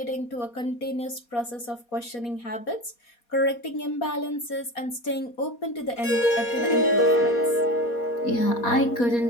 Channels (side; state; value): right; late; 4.2 ms